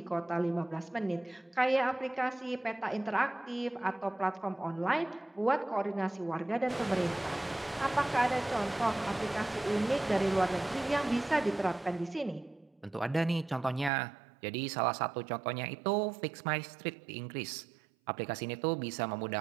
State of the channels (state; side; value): drops out; left; at 13.9 s